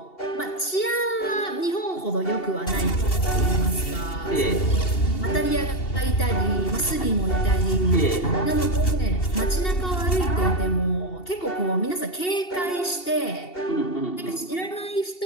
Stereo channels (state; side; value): late; right; 2.7 ms